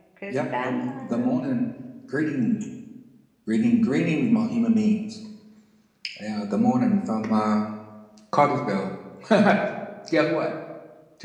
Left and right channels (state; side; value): identical; both; correlation 1.00